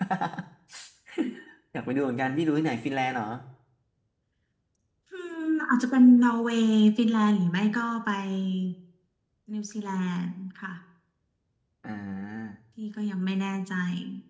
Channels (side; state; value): both; identical; correlation 1.00